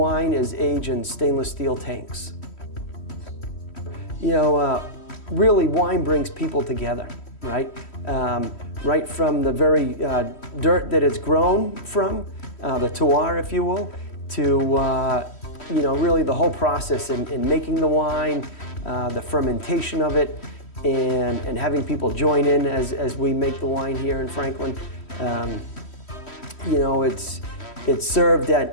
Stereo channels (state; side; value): late; right; 3.1 ms